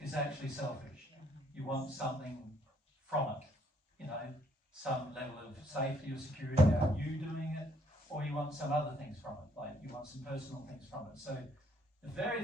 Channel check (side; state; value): both; normal; correlation 0.67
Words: is actually selfish. You want something from it, you know, some level of safety or security about you doing it, or you want some other things from it, like you want some personal things from it. So the very